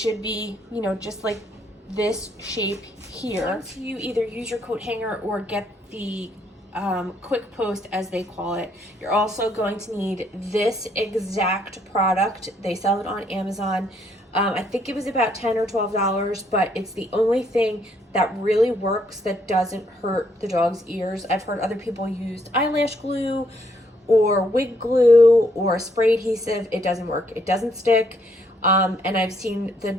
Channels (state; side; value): normal; both; correlation 0.71